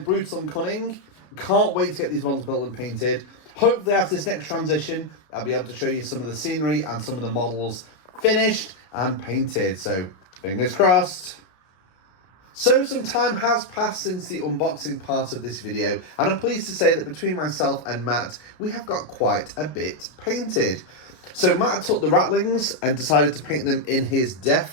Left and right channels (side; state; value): right; late; 33 ms